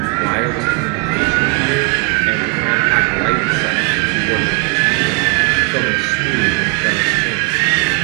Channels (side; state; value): left; quieter; 30.3 dB